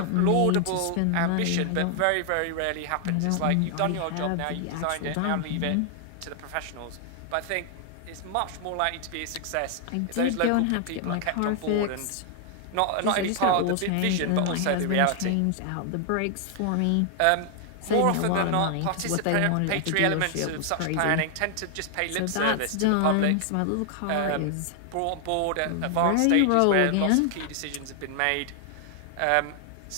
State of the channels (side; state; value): both; different; correlation 0.00